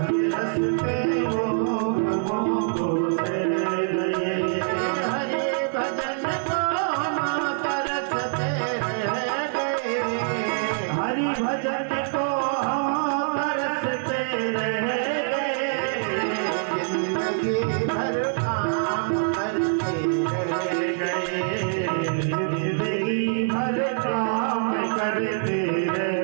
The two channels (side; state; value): left; silent; 56 dB below the other